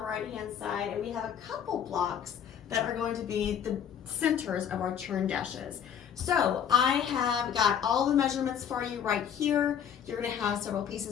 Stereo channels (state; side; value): quieter; right; 8.7 dB